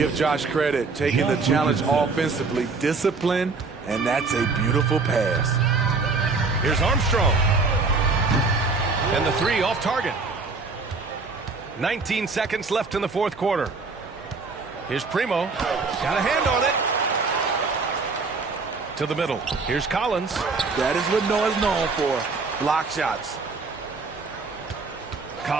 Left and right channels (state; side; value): quieter; left; 4.2 dB